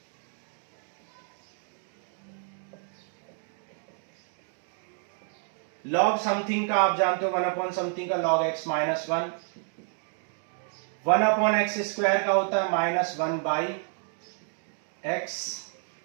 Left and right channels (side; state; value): left; silent; 58 dB below the other